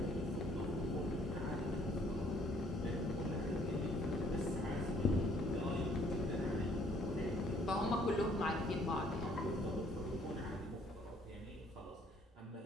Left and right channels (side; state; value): both; normal; correlation 0.62